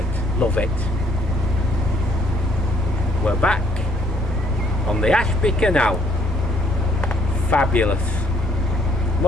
love it. We're back on the Ashby Canal. Fabulous.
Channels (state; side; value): normal; both; correlation 0.66